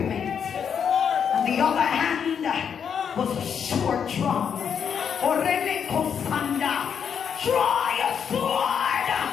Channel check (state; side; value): quieter; right; 7.5 dB